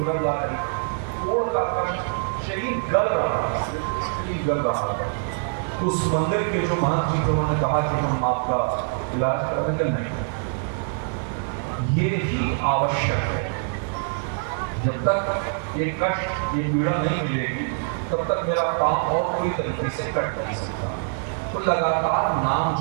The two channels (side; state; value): left; silent; 62 dB below the other